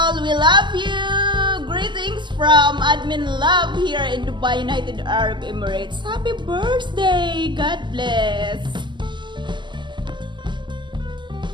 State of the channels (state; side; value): late; left; 0.22 ms